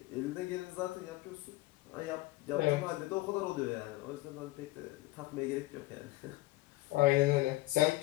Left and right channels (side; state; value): right; quieter; 19.8 dB